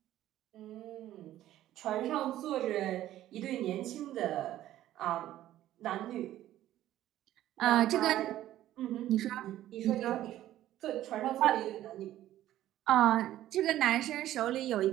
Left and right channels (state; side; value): quieter; left; 13.4 dB